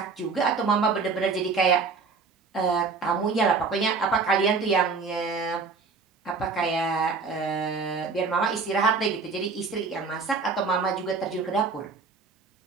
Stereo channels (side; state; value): left; quieter; 4.7 dB